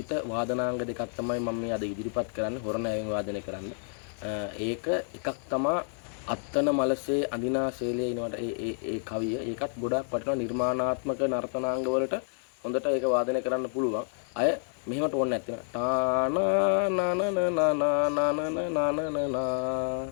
වාදනාංග දෙකක් තමයි මම මේ අද ඉදිරිපත් කරන්නේ හොරණෑවෙන් වාදනය කරන්න. ඒක එකක් තමයි අත්තන මලසේ අඳිනා ශෛලයේ ඉනවට ඒ කවිය. ඒකත් ගොඩාක් වටිනවා නිර්මාණාත්මක නර්තනාංග වලට හොඳට ඒක වාදනය කරන්න පුළුවන්. අය මෙහෙමට ඕනේ නැත්නම් ටානා නනන නනන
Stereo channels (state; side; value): silent; right; digital silence